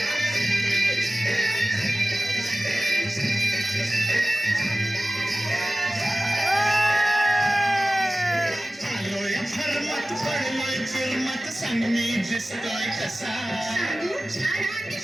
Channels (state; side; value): normal; both; correlation 0.96